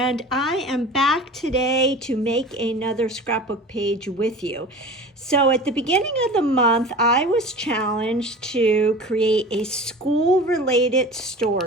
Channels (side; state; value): both; normal; correlation 0.37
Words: I am back today to make another scrapbook page with you. So at the beginning of the month, I was challenged to create a school-related